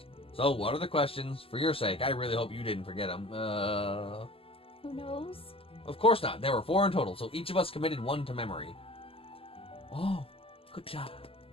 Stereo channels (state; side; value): late; right; 0.27 ms